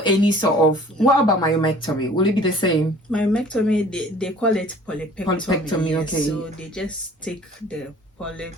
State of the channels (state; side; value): normal; both; correlation 0.50